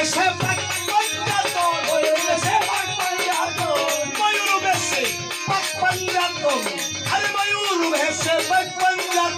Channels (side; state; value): both; identical; correlation 1.00